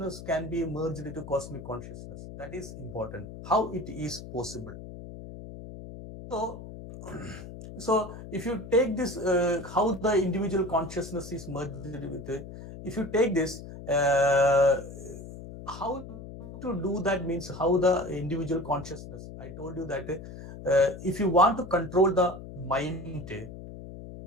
can be merged into cosmic consciousness, that is important. How it is possible. So so if you take this, how the individual consciousness is merged with it, if you take this, how to do that means how the individual consciousness, I told you that if you want to control the mind,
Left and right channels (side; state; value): left; noise; hum, 12 dB below the sound